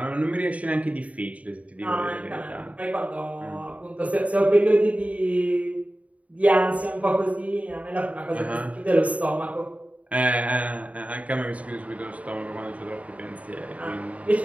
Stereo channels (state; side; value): late; left; 0.068 ms